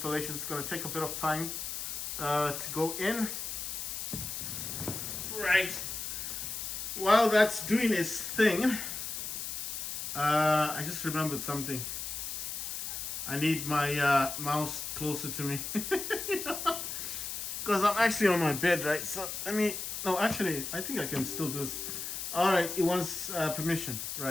It's gonna take a bit of time to go in. Right. While that's doing its thing, I just remembered something. I need my mouse closer to me, because I'm actually on my bed, right? So I think I can still do this. All right, it wants permission,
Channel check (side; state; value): left; noise; hiss, 5 dB below the sound